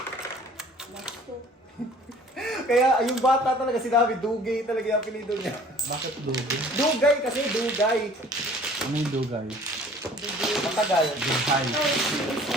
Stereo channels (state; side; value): normal; both; correlation 0.51